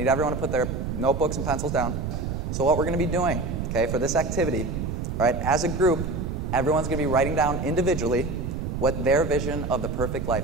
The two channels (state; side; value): noise; right; rumble, 3 dB below the sound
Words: everyone to put their notebooks and pencils down. So what we're going to be doing, okay, for this activity, right, as a group, everyone's going to be writing down individually what their vision of the perfect